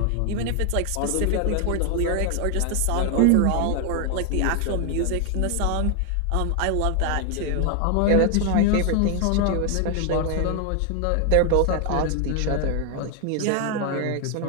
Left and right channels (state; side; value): different; both; correlation 0.00